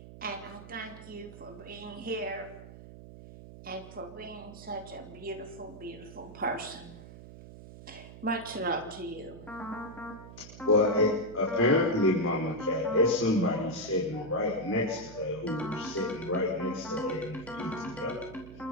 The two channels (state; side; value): noise; right; hum, 15 dB below the sound